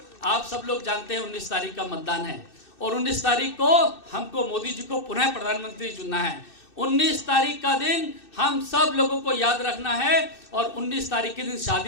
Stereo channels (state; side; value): late; right; 2.6 ms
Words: आप सब लोग जानते हैं 19 तारीख का मतदान है और 19 तारीख को हमको मोदी जी को पुनः प्रधानमंत्री चुनना है। 19 तारीख का दिन हम सब लोगों को याद रखना है और 19 तारीख के दिन